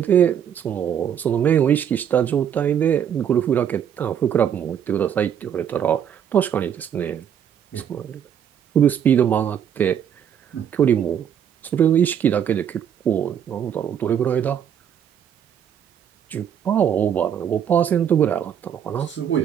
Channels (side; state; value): left; quieter; 8.8 dB